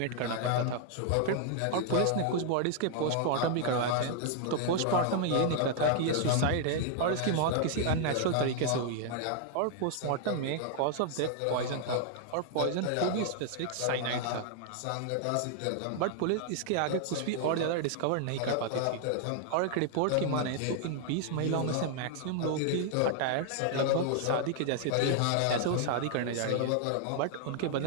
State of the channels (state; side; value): different; both; correlation 0.00